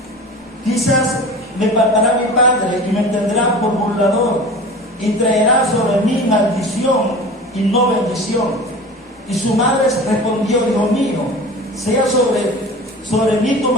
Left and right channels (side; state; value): both; normal; correlation 0.36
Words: quizás me faltará mi padre y me tendrá por burlador, y traerá sobre mí maldición y no bendición. Y su madre respondió: hijo mío, sea sobre mí tu